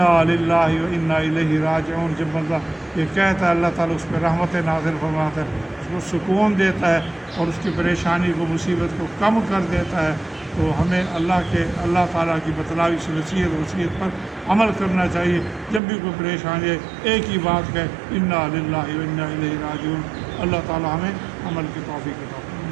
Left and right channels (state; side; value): drops out; left; at 15.8 s